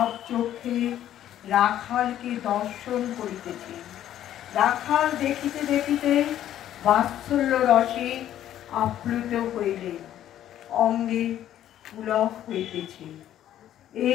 চোখে রাখালকে দর্শন করিতেছে। রাখাল দেখিতে দেখিতে বাৎসল্য রসে আপ্লুত হইলে অঙ্গে পুলক হইতেছে।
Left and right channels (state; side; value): quieter; right; 11.7 dB